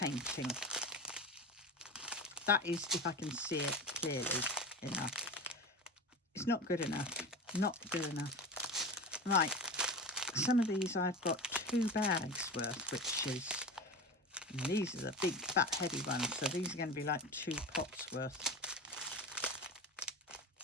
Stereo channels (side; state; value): both; normal; correlation 0.27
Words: That is if I can see it clearly enough. It's not good enough. Not good enough. Right, some of these I've got 2 bags worth, which is, and these are the big fat heavy ones, so these are going to be like 2 pots worth.